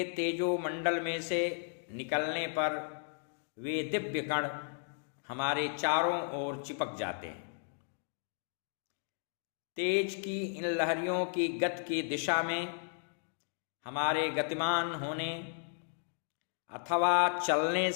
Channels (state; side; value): silent; right; digital silence